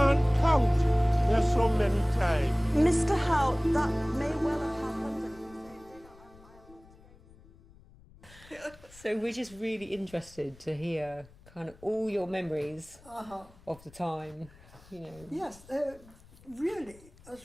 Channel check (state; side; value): noise; left; rumble, 24 dB below the sound